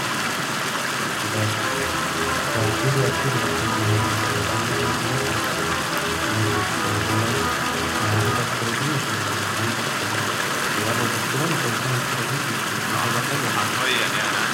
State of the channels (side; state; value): both; identical; correlation 1.00